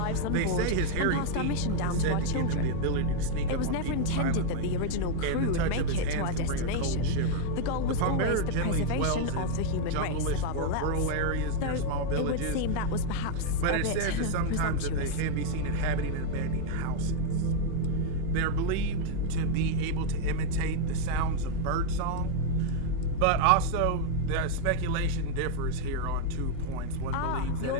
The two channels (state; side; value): different; both; correlation 0.00